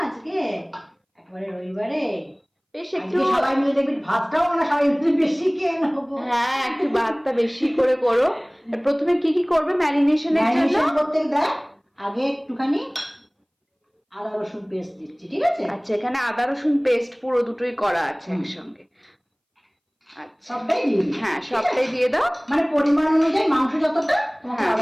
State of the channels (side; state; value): both; identical; correlation 1.00